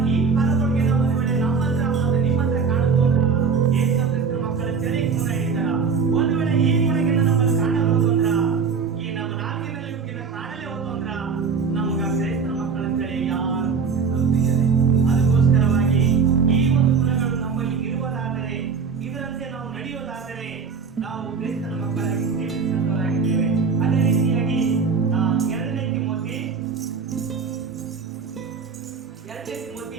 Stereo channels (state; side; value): quieter; left; 5.5 dB